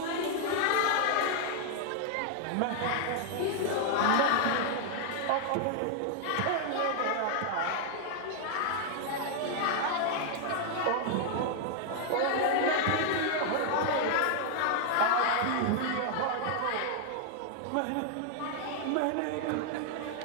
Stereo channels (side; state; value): both; different; correlation 0.00